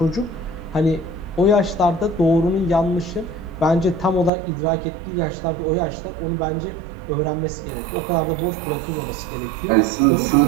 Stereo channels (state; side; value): drops out; left; at 4.3 s